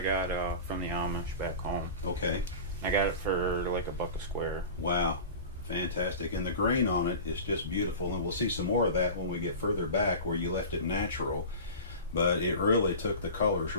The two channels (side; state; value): both; inverted; correlation -0.34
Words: got from the Amish back home. Okay. I got it for like $1 a square. Wow, fantastic. And the grain on it is just beautiful. And we'll see some more of that when we get further back where you left it natural. But it really took the colors